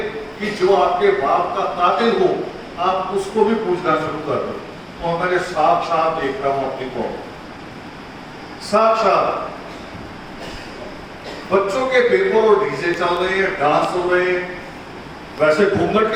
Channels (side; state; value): both; identical; correlation 1.00